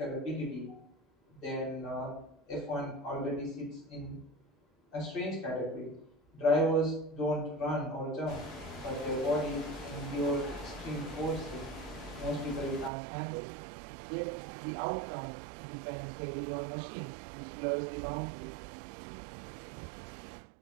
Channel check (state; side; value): drops out; left; at 12.9 s